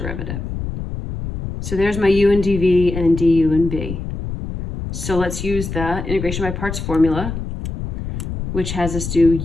So there's my u and dv and du and v. So let's use the integration by parts formula, which has us do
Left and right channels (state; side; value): noise; left; rumble, 6 dB below the sound